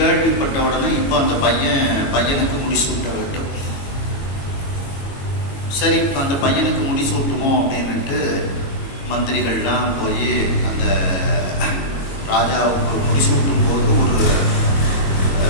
உடனே இப்போ அந்த பையனுக்கு முடிசூட்ட வேண்டும். சரி, அந்த பையனுக்கு முடிசூட்டுவோம் அப்படின்னுட்டு மந்திரிகள்லாம் போய் அந்த ராஜாவுக்கு முடிசூட்டும் போது ஒரு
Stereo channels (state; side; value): late; right; 22 ms